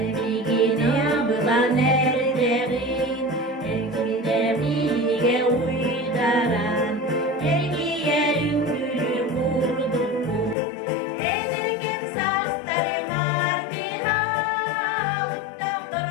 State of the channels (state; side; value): drops out; right; at 10.6 s